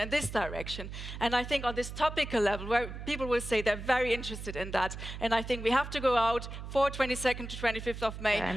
this direction. And I think on this topical level, where people will say they're very interested in that, and I think we have to go out for 22nd to 25th of May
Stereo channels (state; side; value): noise; right; hum, 9 dB below the sound